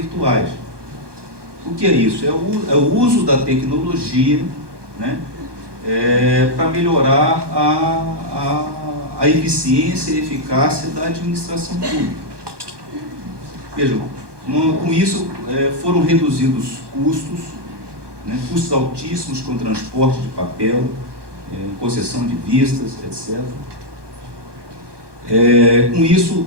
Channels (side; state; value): left; late; 1.2 ms